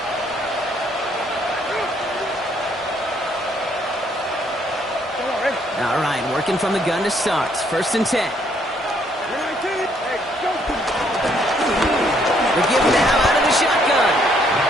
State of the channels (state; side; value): normal; both; correlation 0.68